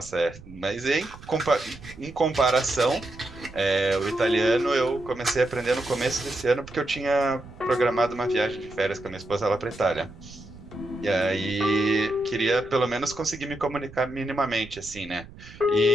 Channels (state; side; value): noise; right; rumble, 18 dB below the sound